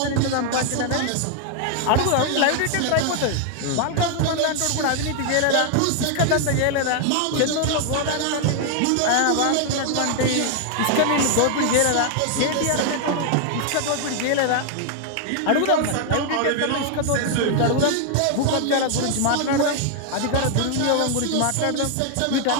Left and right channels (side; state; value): both; different; correlation 0.00